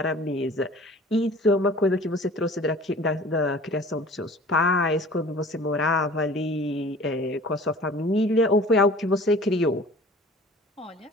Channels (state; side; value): normal; both; correlation 0.46